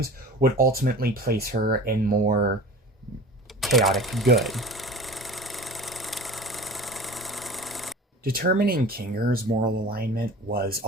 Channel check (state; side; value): normal; both; correlation 0.39